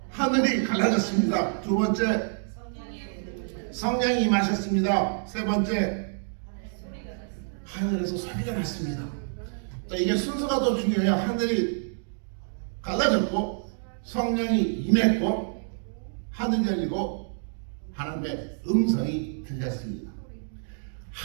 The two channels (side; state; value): left; silent; digital silence